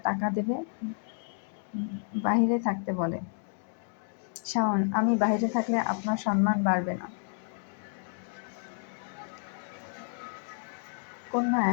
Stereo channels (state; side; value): silent; right; 57 dB below the other